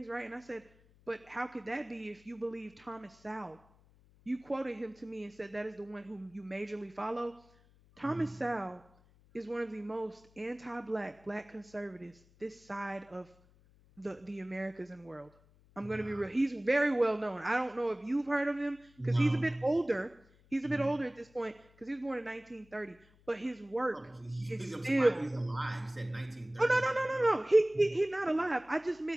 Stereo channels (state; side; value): noise; left; hum, 28 dB below the sound